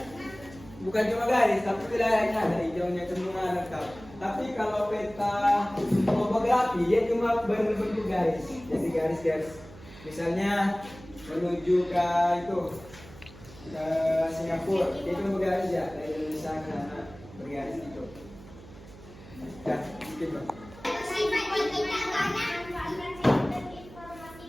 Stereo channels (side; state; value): right; noise; hum, 18 dB below the sound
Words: bukan cuma garis, tapi wilayahnya ada hijaunya semua lengkap. Tapi kalau peta topografi dia cuma berbentuk garis. Jadi garis-garis. Misalnya menuju ke itu ke Singapura, dia cuma bergaris ya dari Indonesia ke sana bergaris itu. Ya, gitu.